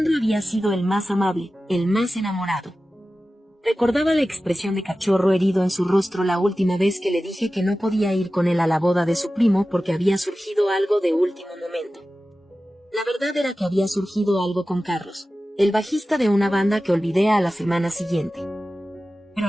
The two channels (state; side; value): normal; both; correlation 0.95